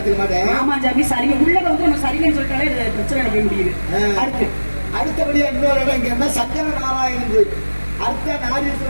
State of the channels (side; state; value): both; inverted; correlation -1.00